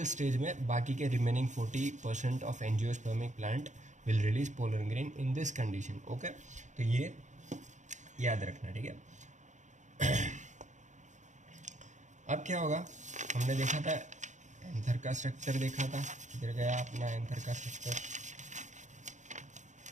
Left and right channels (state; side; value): late; left; 0.35 ms